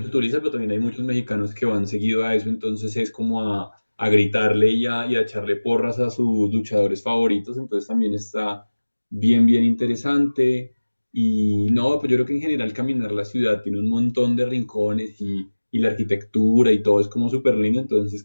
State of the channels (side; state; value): both; inverted; correlation -1.00